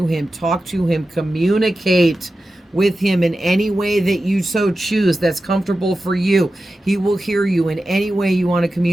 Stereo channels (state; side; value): normal; both; correlation 0.93